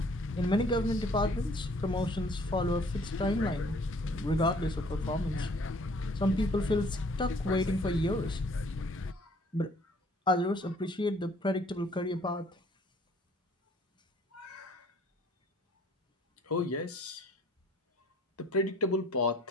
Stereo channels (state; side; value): normal; both; correlation 0.58